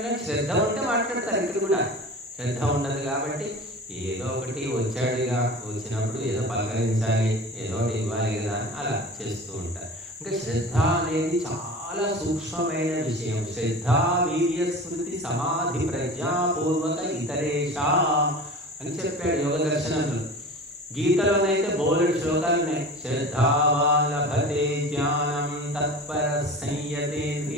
శ్రద్ధ ఉంటే మాట్లాడతారు. ఇక్కడ కూడా శ్రద్ధ ఉండదు కాబట్టి ఏదో ఒకటి వచ్చాడుగా, వచ్చినప్పుడు ఏదో పలకరించాలి, ఏదో ఒకటి ఇవ్వాలి కదా అని అలా చేస్తూ ఉంటారు. ఇంకా శ్రద్ధ అనేది చాలా సూక్ష్మమైన విషయం. శ్రద్ధ వీర్య స్మృతి సమాధి ప్రజ్ఞాపూర్వక ఇతరేషా అని చెప్పాడు యోగ దర్శనంలో. గీతలోనైతే బోలెడు శ్లోకాలు ఉన్నాయి. శ్రద్ధావాన్ లభతే జ్ఞానం తత్పర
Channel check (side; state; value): both; normal; correlation 0.35